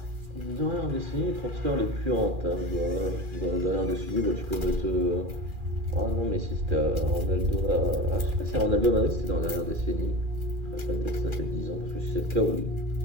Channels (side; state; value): left; late; 2.4 ms